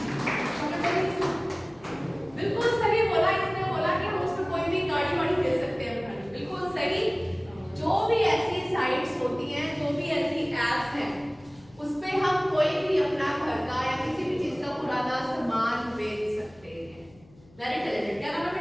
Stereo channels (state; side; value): noise; left; hum, 26 dB below the sound